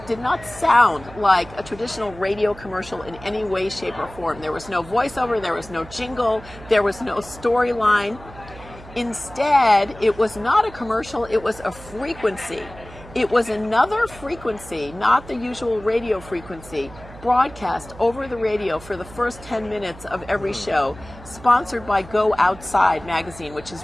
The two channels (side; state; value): right; noise; hum, 18 dB below the sound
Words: sound like a traditional radio commercial in any way, shape, or form. There was no voiceover, there was no jingle, there was no storyline. Instead, it was not a commercial, it was a frequency. It was another frequency, not the usual radio frequency, broadcast over the radio for the first 10 minutes of every show, sponsored by Go Outside magazine, which is